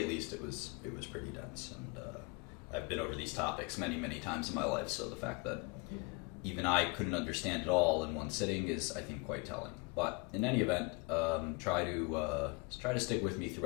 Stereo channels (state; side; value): quieter; right; 30.0 dB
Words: least it was pretty dense, and I've been over these topics many times in my life, so the fact that even I couldn't understand it all in one sitting is, I think, quite telling. But in any event, try to stick with me